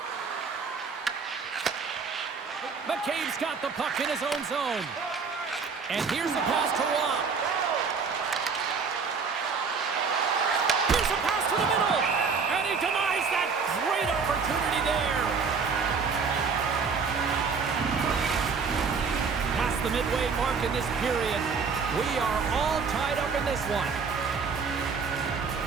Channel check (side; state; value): left; quieter; 5.3 dB